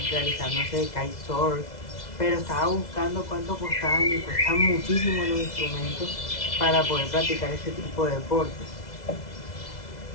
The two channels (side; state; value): right; late; 2.0 ms